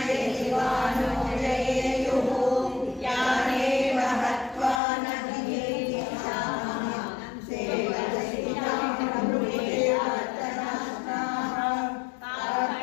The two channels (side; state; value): right; drops out; at 4.8 s